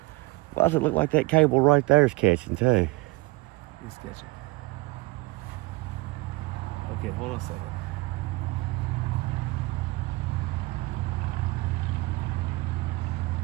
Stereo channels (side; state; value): left; quieter; 21.8 dB